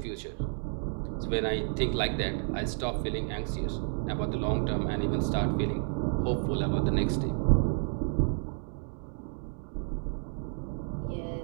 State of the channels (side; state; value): left; silent; 57 dB below the other